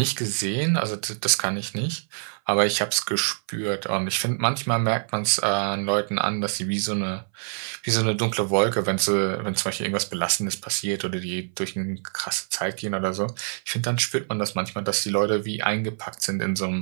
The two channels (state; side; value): silent; left; 59 dB below the other